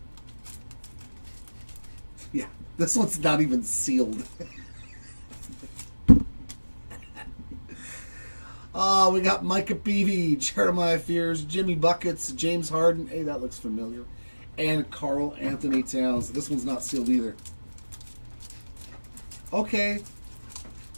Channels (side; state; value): both; inverted; correlation -1.00